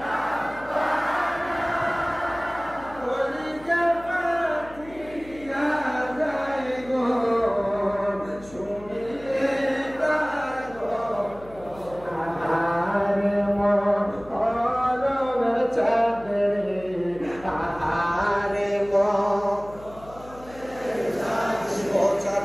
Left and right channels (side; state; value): left; noise; hum, 20 dB below the sound